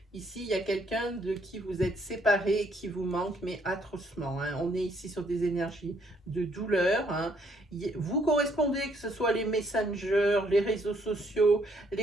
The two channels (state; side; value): normal; both; correlation 0.69